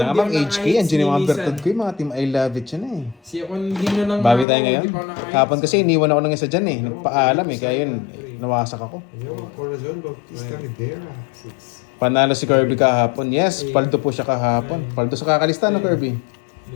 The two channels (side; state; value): right; drops out; at 4.5 s